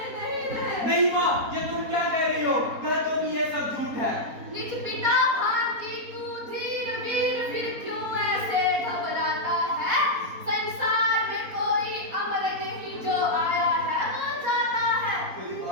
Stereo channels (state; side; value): late; left; 4.2 ms